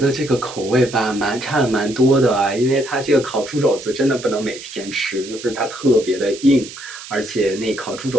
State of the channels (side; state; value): right; noise; hiss, 14 dB below the sound